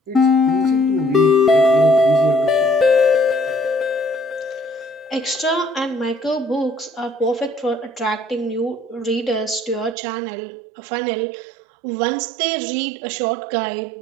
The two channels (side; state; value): left; drops out; at 10.0 s